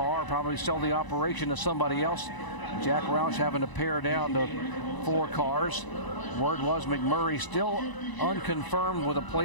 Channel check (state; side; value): late; right; 1.0 ms